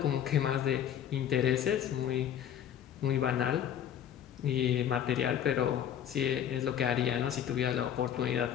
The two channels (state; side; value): quieter; right; 9.9 dB